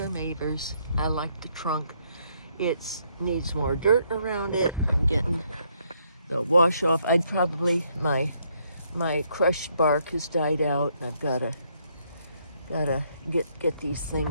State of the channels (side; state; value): both; inverted; correlation -0.72